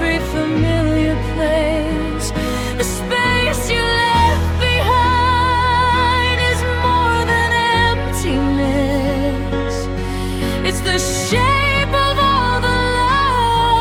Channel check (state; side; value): identical; both; correlation 1.00